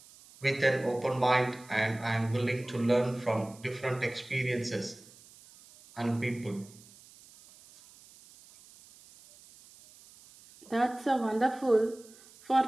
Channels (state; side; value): noise; right; hiss, 23 dB below the sound